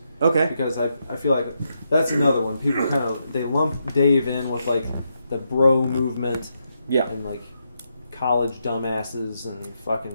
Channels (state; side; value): inverted; both; correlation -0.82